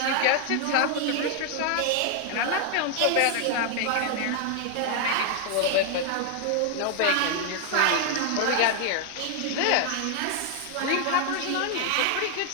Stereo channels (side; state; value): both; different; correlation 0.00